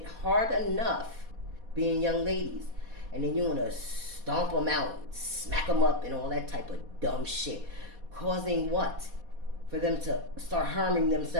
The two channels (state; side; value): late; left; 4.2 ms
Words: hard enough being young ladies. And then you want to stomp them out, smack them up, and all that type of dumb shit. Causing what? For them to start harming